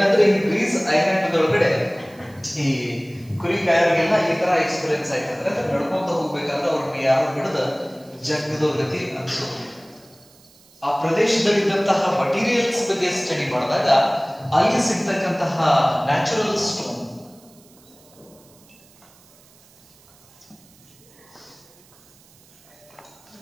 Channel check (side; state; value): right; noise; hiss, 28 dB below the sound